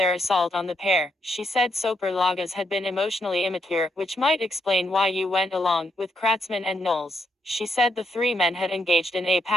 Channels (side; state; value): both; normal; correlation 0.78